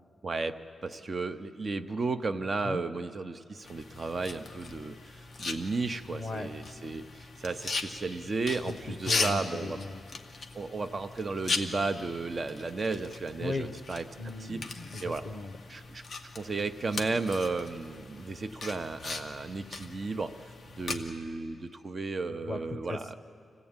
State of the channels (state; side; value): normal; both; correlation 0.86